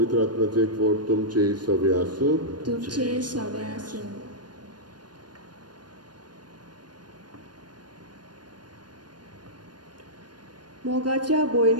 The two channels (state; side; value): late; left; 0.70 ms